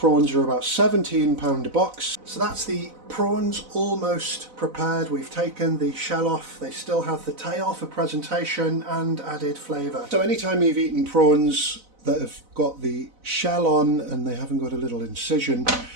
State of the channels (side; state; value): left; late; 4.0 ms